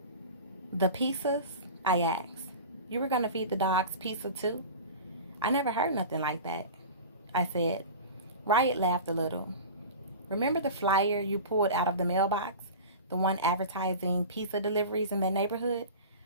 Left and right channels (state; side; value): inverted; both; correlation -0.33